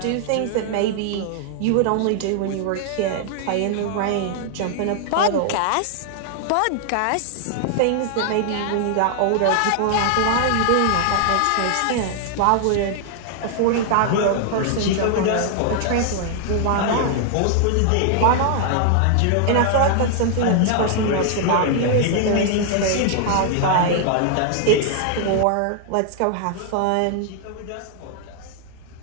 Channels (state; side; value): different; both; correlation 0.00